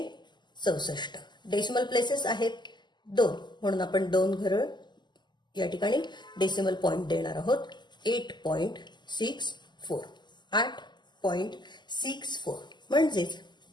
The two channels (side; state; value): right; late; 0.21 ms